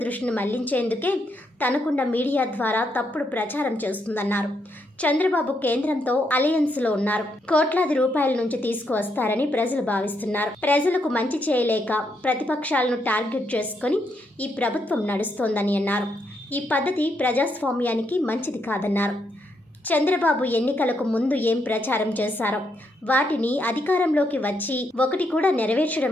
దృష్టిని మళ్లించేందుకే తనకున్న మీడియా ద్వారా తప్పుడు ప్రచారం చేస్తుందన్నారు. చంద్రబాబు కేంద్రంతో అలయన్స్లో ఉన్నారు. కోట్లాది రూపాయల నుంచి తీసుకువస్తారని ప్రజలు భావిస్తున్నారు. ప్రజలకు మంచి చేయలేక ప్రతిపక్షాలను టార్గెట్ చేసుకుని ఈ ప్రభుత్వం నడుస్తోందని అన్నారు. ఈ పద్ధతి ప్రజాస్వామ్యానికి మంచిది కాదన్నారు. చంద్రబాబు ఎన్నికలకు ముందు ఏం ప్రచారం చేశారో వాటిని అధికారంలోకి వచ్చి ఒకటి కూడా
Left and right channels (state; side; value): normal; both; correlation 0.78